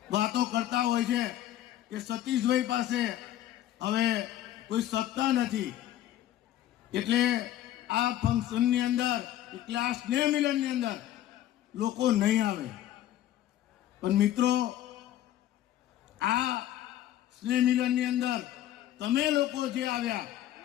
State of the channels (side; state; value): right; quieter; 12.8 dB